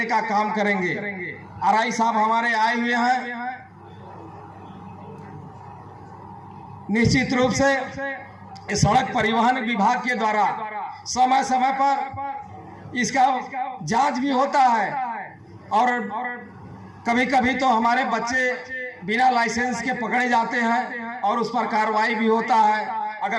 का काम करेंगे। आरआई साहब हमारे आए हुए हैं, निश्चित रूप से सड़क परिवहन विभाग के द्वारा समय समय पर इसका जांच भी होता है, और कभी कभी तो हमारे बच्चे बिना लाइसेंस के पकड़े जाते हैं और उस पर कार्रवाई भी होता है।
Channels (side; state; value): both; identical; correlation 1.00